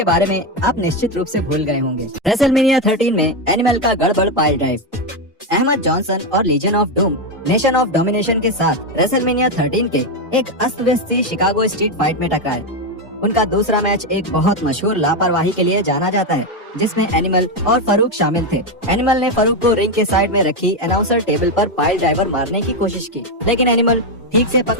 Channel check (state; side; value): normal; both; correlation 0.07